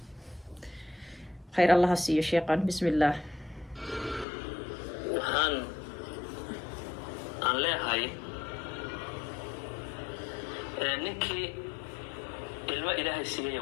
khayr allaha siiyo sheeqan. bismillaah. waxaan aan leeyahay ninkii ilmo ilaahay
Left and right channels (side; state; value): right; drops out; at 4.2 s